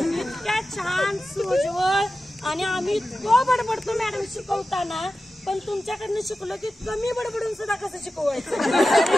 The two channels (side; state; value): both; normal; correlation 0.93